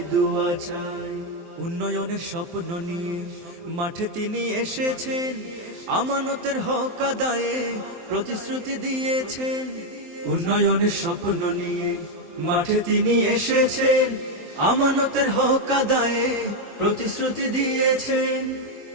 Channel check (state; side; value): late; left; 23 ms